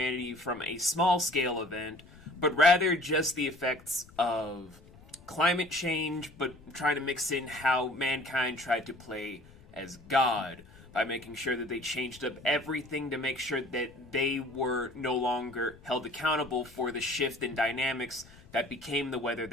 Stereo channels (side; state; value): left; noise; rumble, 23 dB below the sound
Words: from a small-scale event, but rather just the effects of climate change, but trying to mix in how mankind tried to play as God by making sure that they changed up everything to make sure that they were no longer held accountable for the shift in dynamics that became the weather